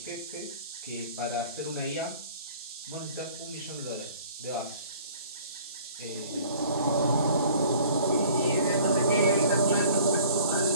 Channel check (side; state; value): both; inverted; correlation -0.50